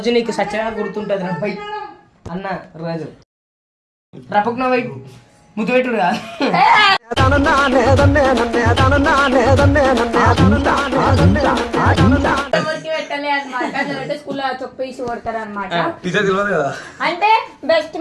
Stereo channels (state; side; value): identical; both; correlation 1.00